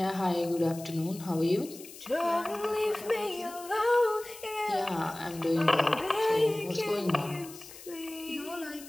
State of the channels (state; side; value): noise; left; hiss, 16 dB below the sound